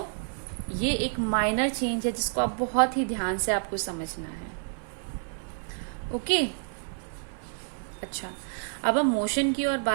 ये एक माइनर चेंज है जिसको आप बहुत ही ध्यान से आपको समझना है. ओके. अच्छा, अब हम मोशन की और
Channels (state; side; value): silent; left; digital silence